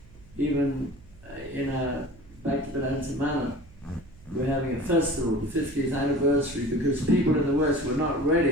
Even back to Vedanta Manor, we're having a festival, the 50th anniversary, because people in the West were not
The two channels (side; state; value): right; noise; hum, 23 dB below the sound